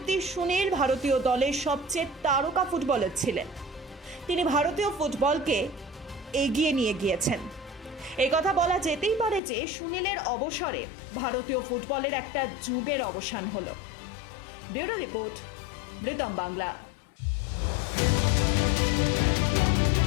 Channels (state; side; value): drops out; right; at 9.4 s